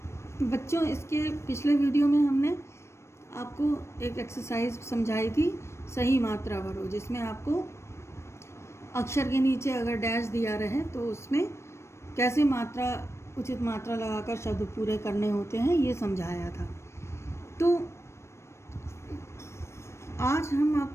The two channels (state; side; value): late; right; 0.13 ms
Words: बच्चों, इसके पिछले वीडियो में हमने आपको एक एक्सरसाइज समझाई थी, सही मात्रा भरो, जिसमें आपको अक्षर के नीचे अगर डैश दिया रहे तो उसमें कैसे उचित मात्रा लगाकर शब्द पूरे करने होते हैं, ये समझाया था। तो आज हम